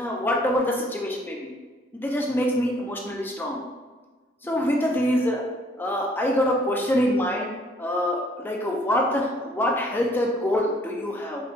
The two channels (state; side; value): normal; both; correlation 0.61